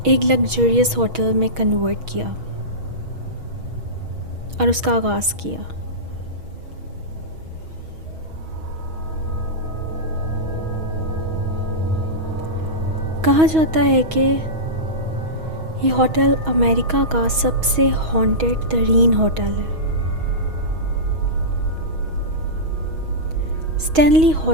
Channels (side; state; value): left; late; 6.3 ms